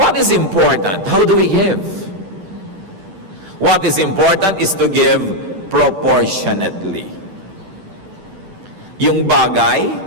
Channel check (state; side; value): late; left; 10 ms